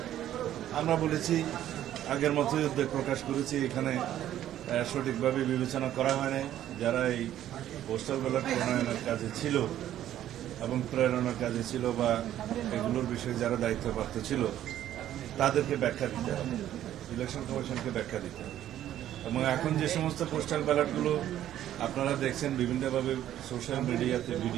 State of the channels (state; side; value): quieter; left; 12.0 dB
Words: আমরা বলেছি আগের মতোই উদ্বেগ প্রকাশ করেছি। এখানে সঠিকভাবে বিবেচনা করা হয় নাই। যারা এই পোস্টাল ব্যালট প্রণয়নের কাজে ছিল এবং প্রেরণার কাজে ছিল বা এগুলোর বিষয়ে যারা দায়িত্বপ্রাপ্ত ছিল তাদেরকে ব্যাখ্যা দিতে হবে, ইলেকশন কমিশনকে ব্যাখ্যা দিতে হবে। এবং এখন যে সমস্ত পোস্টাল ব্যালটগুলো আপনারা দেখছেন বিভিন্নভাবে সোশ্যাল মিডিয়াতে